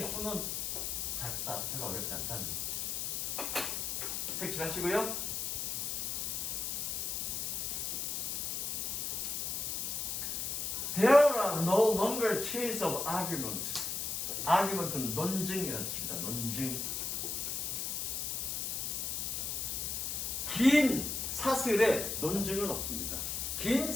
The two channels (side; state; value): left; noise; hiss, 1 dB below the sound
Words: 수는 작다. 별로 어렵지 않다는 거죠. 색칠하시고요. There are no longer chains of arguments. argument는 논증이라는 뜻입니다. 논증. 긴 사슬에 논증은 없습니다. 긴